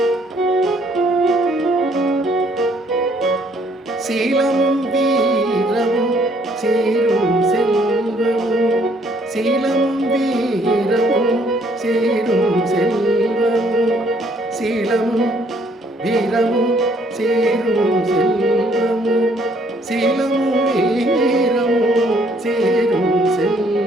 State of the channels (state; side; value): normal; both; correlation 0.65